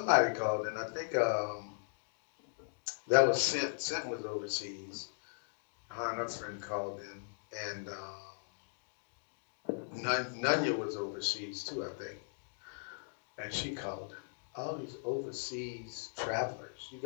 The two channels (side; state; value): right; silent; digital silence